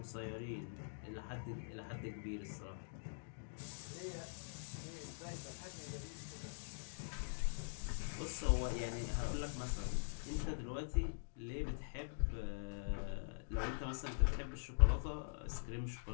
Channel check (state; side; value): silent; right; digital silence